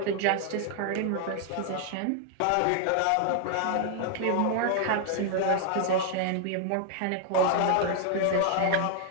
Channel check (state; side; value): different; both; correlation 0.00